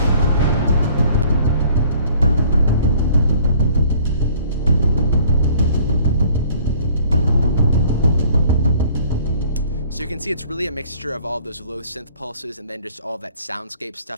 So you can see it's really a mixture of all of those low synth pulses and then just all that soundscape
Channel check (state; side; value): inverted; both; correlation -0.55